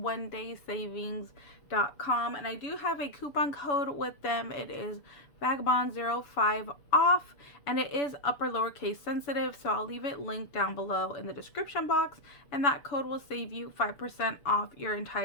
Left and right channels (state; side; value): late; right; 7.0 ms